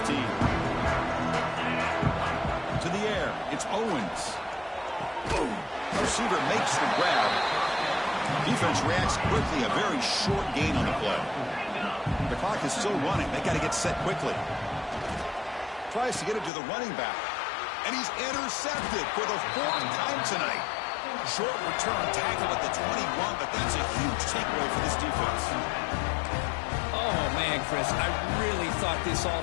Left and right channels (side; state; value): right; drops out; at 16.5 s